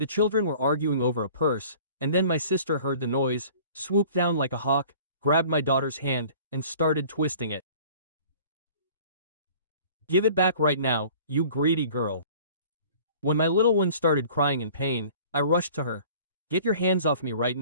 children were arguing over a purse, and then my sister heard the noise, swooped down like a hawk, grabbed my daughter's hand, and started twisting it. "Give it back right now, you greedy girl." When my little one started crying in pain, I rushed to her. "Get your hands off me right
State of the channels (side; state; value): both; inverted; correlation -0.48